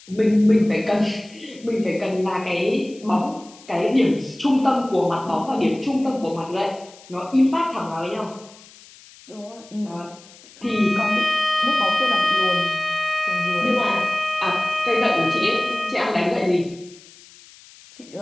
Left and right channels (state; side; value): noise; left; hiss, 23 dB below the sound